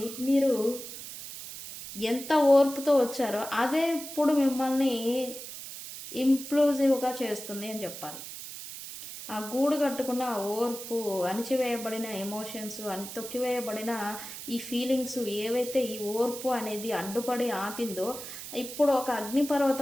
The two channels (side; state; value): right; noise; hiss, 10 dB below the sound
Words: మీరు ఎంత ఓర్పుతో వచ్చారో అదే ఇప్పుడు మిమ్మల్ని ఇంప్లూజివ్గా చేస్తుంది అని చెప్పాలి. ఆ గూడు కట్టుకున్న ఓర్పు, అణిచివేయబడిన ఎమోషన్స్, తొక్కివేయబడిన ఈ ఫీలింగ్స్ ఏవైతే ఈ ఓర్పు అనేది అడ్డుపడి ఆపిందో ఇప్పుడు ఒక